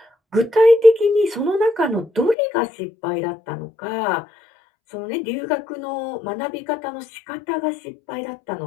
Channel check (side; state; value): right; drops out; at 2.4 s